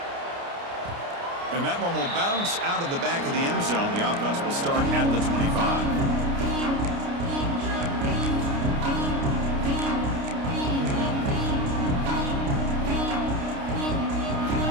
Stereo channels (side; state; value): left; late; 29 ms